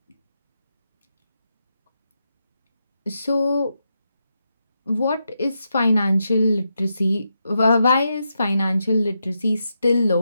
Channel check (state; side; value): inverted; both; correlation -0.85